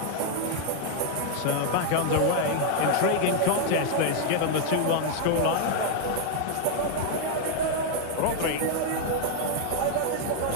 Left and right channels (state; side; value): different; both; correlation 0.00